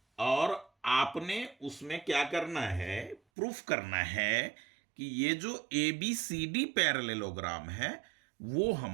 और आपने उसमें क्या करना है, प्रूफ करना है कि ये जो ABCD पैरेललोग्राम है वो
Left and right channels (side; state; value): left; drops out; at 3.2 s